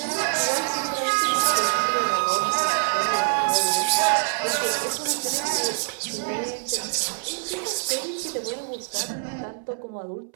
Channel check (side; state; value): left; silent; 62 dB below the other